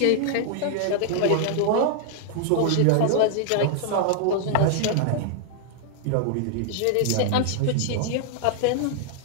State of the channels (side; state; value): both; different; correlation -0.01